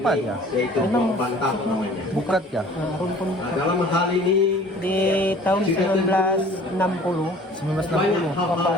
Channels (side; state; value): both; normal; correlation 0.49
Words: ya? Memang Bukat ya? rumpun Bukat. Di tahun 1960